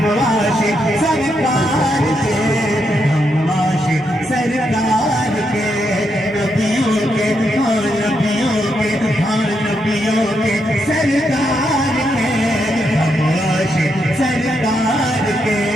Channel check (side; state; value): both; normal; correlation 0.80